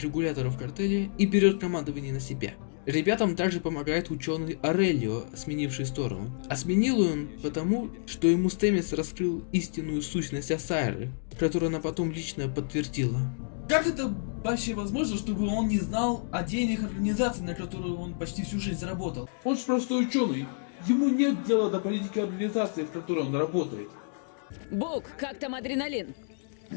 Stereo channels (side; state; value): right; silent; digital silence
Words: картеля и берет командование на себя. Ребятам также помогает ученый Орелио, сменивший сторону. А сменил он потому, что ему Стэмис раскрыл истинную сущность Ассайры, которую она потом лично подтвердила. Как это вообще возможно, чтобы он не знал о деяниях организации, на которую он почти всю жизнь заработал? Он же простой ученый. Ему нет дела до политики организации, в которой он работает. Бук, как там адреналин?